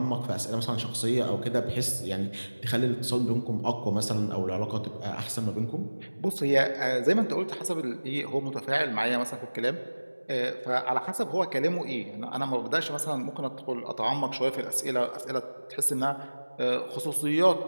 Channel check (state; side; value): inverted; both; correlation -1.00